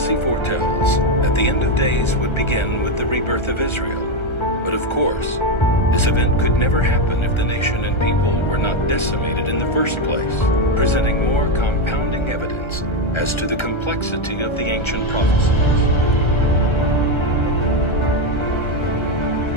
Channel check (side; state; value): right; late; 1.3 ms